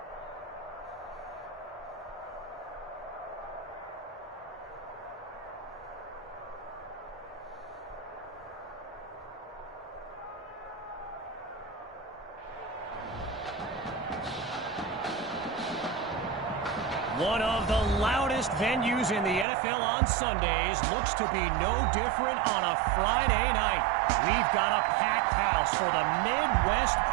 One of the loudest venues in the NFL on Sundays looks to be no different on a Friday night. We've got a packed house for the Midwest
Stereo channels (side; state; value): left; drops out; at 19.5 s